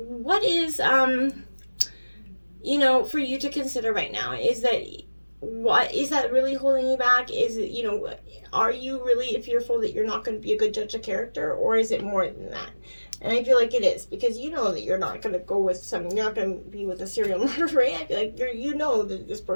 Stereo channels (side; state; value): both; inverted; correlation -1.00